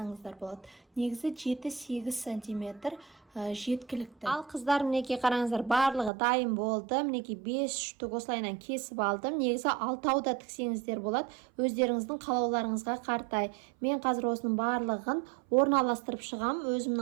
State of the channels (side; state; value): left; drops out; at 6.1 s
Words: болады. Негізі 7-8 сантиметр жеткілікті. Ал қыздар, мінекей қараңыздар, барлығы дайын болды. Мінекей 5 штук осылайынан кесіп алдым. Негізі 6 да тіксеңіздер болады. Өздеріңіздің қалауларыңызға қартай. Мен қазір осының барлығын орналастырып шығам.